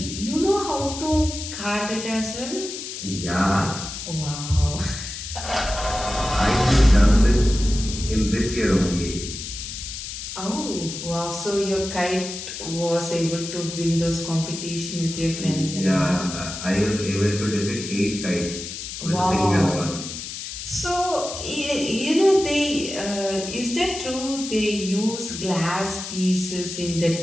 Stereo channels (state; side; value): noise; left; hiss, 8 dB below the sound